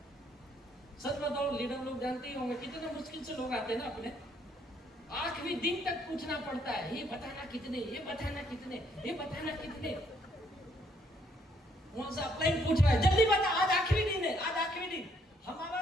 सच बताओ, लीडर लोग जानते ही होंगे कितने मुश्किल से लोग आते हैं ना अपने, आखिरी दिन तक पूछना पड़ता है, ये बताना कितने, ये बताना कितने, ये बताना कितने। वहां से अपलाइन पूछ रहा है, जल्दी बता, आज आखिरी दिन है, आज आखिरी दिन। हमारा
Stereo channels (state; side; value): normal; both; correlation 0.69